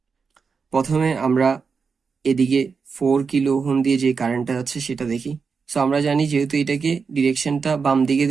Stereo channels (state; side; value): quieter; left; 5.3 dB